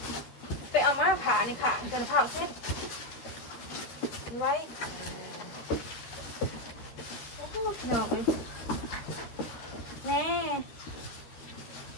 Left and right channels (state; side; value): late; right; 13 ms